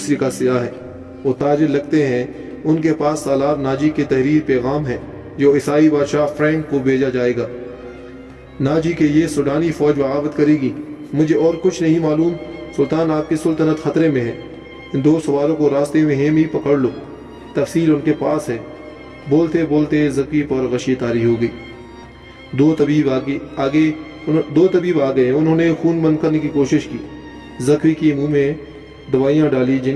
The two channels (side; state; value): both; identical; correlation 1.00